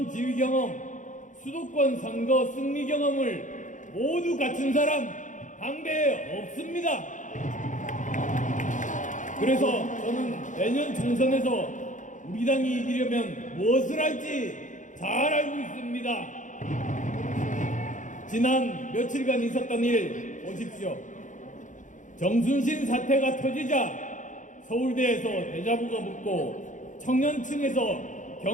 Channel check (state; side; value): late; right; 0.37 ms